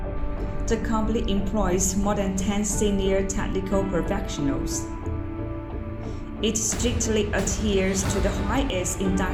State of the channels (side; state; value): both; identical; correlation 1.00